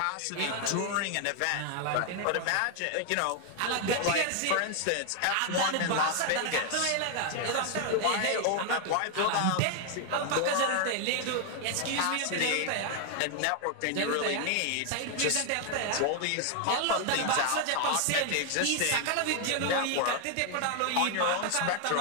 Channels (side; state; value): both; different; correlation 0.00